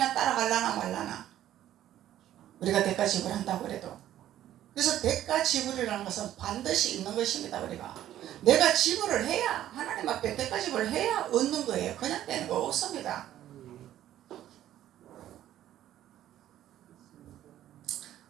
따라갈라나 말라나 우리가 대가 지불한다고 그래도. 그래서 대가 지불이라는 것은 반드시 있는 것입니다. 우리가 내가 지불을 해야, 하나님 앞에 대가 지불을 해야 얻는 거예요. 그냥 되는 거 없습니다.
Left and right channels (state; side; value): quieter; left; 12.4 dB